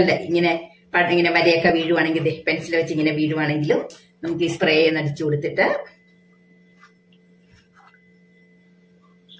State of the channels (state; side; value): identical; both; correlation 1.00